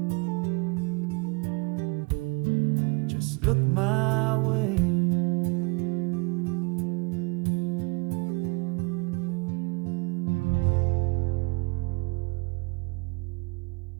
Just look my way.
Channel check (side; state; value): left; quieter; 28.6 dB